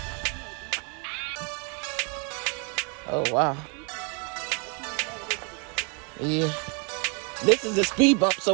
Oh, wow. Yeah. This is a speed bump, so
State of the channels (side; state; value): left; quieter; 35.2 dB